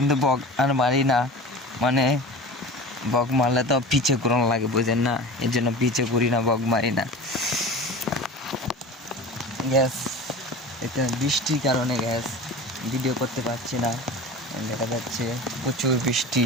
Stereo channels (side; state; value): both; normal; correlation 0.34